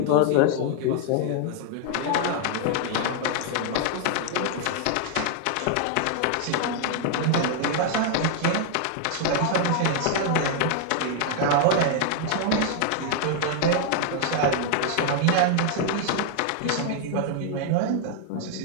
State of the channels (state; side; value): different; both; correlation 0.00